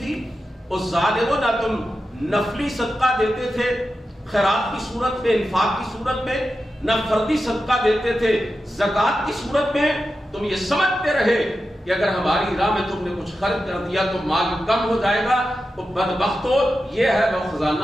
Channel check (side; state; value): both; normal; correlation 0.91